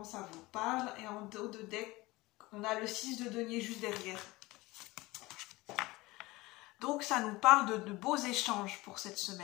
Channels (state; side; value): quieter; right; 20.9 dB